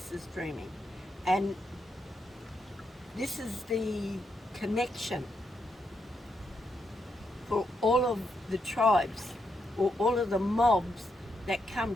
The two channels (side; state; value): both; normal; correlation 0.81